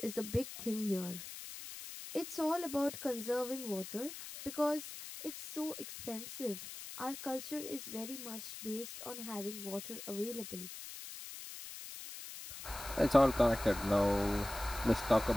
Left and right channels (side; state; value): left; noise; hiss, 10 dB below the sound